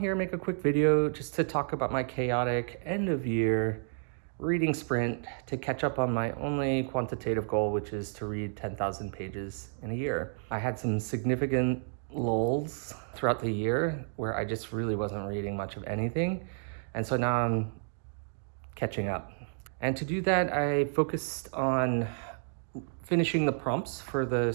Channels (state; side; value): silent; left; digital silence